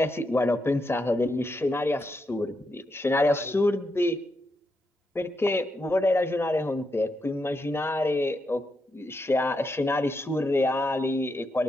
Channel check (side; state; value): both; normal; correlation 0.83